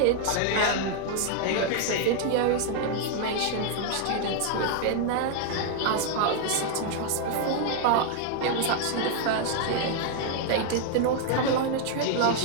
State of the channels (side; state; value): both; different; correlation 0.00